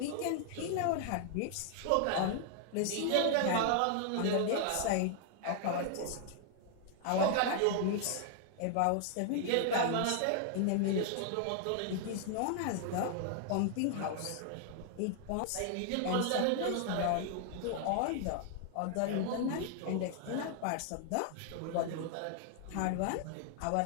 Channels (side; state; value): both; different; correlation 0.00